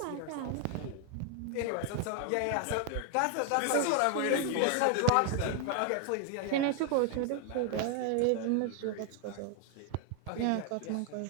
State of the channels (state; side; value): different; both; correlation 0.00